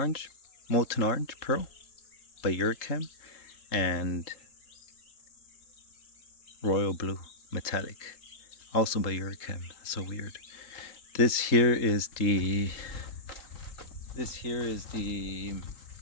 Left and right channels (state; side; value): late; right; 3.8 ms